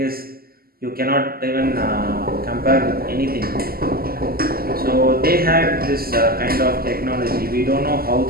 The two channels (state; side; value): late; left; 0.43 ms